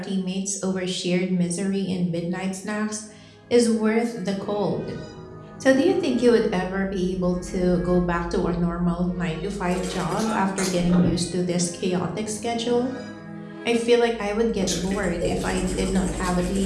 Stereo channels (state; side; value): identical; both; correlation 1.00